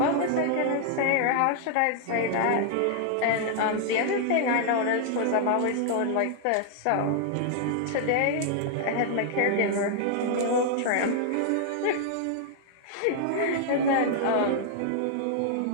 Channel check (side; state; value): both; different; correlation -0.01